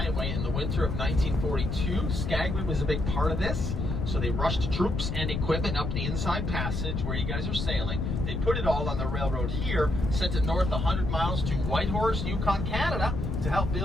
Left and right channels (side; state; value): left; noise; rumble, 2 dB below the sound